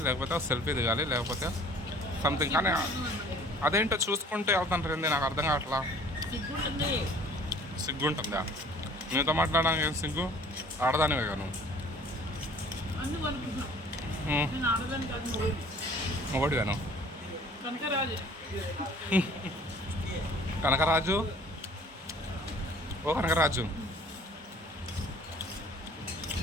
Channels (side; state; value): both; normal; correlation 0.52